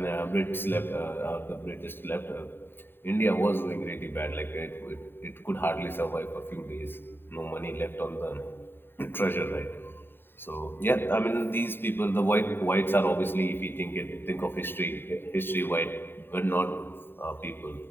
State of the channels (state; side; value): late; right; 0.10 ms